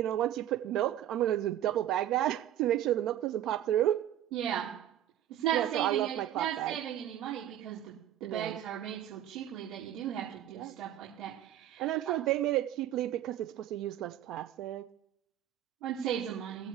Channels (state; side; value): quieter; left; 11.7 dB